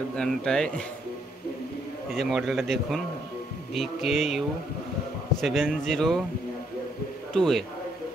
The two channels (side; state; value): both; normal; correlation 0.72